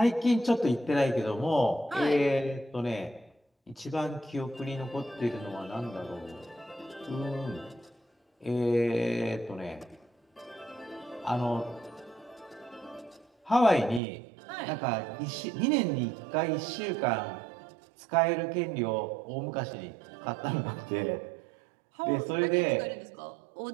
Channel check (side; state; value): left; drops out; at 14.0 s